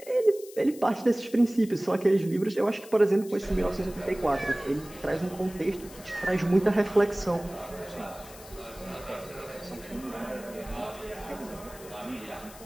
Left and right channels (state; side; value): noise; left; hiss, 19 dB below the sound